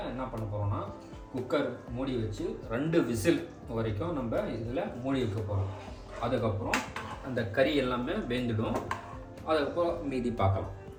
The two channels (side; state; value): both; identical; correlation 1.00